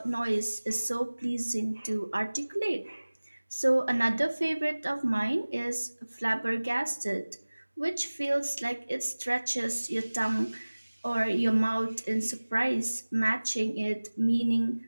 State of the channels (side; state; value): both; inverted; correlation -1.00